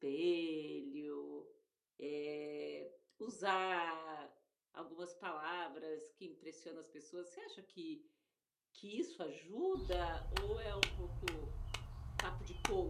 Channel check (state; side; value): identical; both; correlation 1.00